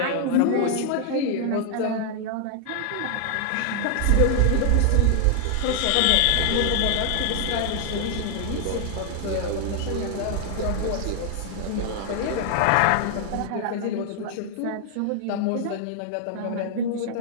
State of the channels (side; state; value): both; different; correlation 0.00